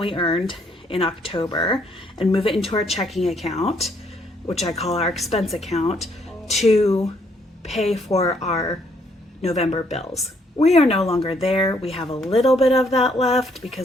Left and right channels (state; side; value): normal; both; correlation 0.69